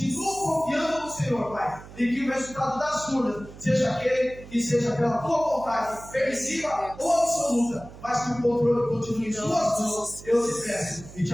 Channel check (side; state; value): right; noise; hum, 17 dB below the sound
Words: confiando no Senhor, Pai, e que o resultado das urnas seja aquele que seja pela tua vontade, permissiva ou absoluta, mas que o controle continue em suas mãos. Eu te peço e